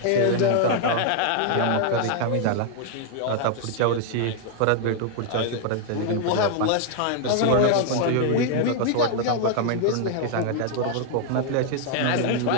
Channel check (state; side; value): different; both; correlation 0.00